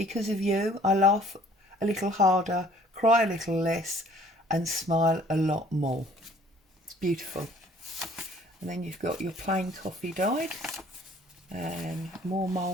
of you, I laugh a little harder, cry a little less, and smile a lot more. It's beautiful. And then you've got your plain coffee dyed and more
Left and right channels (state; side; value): normal; both; correlation 0.56